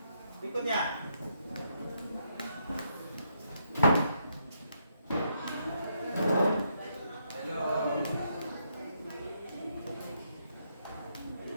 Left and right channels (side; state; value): both; inverted; correlation -0.77